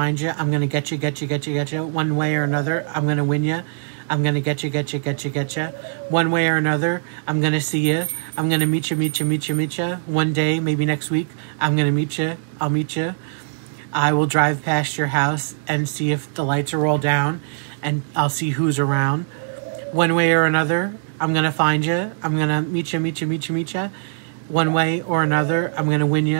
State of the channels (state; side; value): silent; left; digital silence